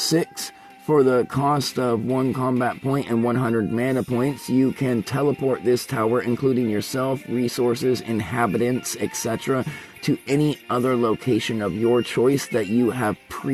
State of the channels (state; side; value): identical; both; correlation 1.00